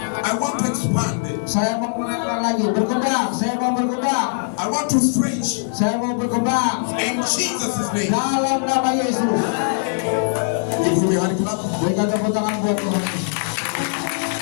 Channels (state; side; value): silent; right; digital silence